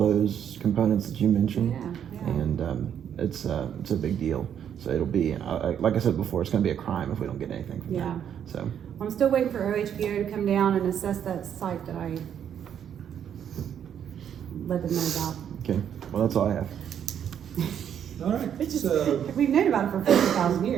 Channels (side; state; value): left; quieter; 9.0 dB